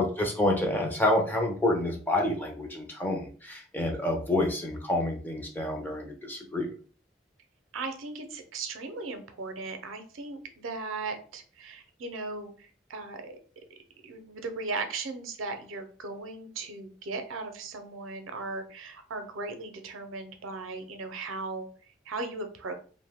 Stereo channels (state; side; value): normal; both; correlation 0.38